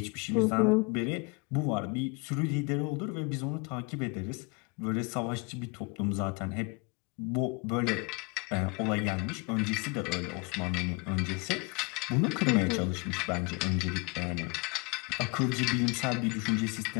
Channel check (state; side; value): quieter; right; 30.4 dB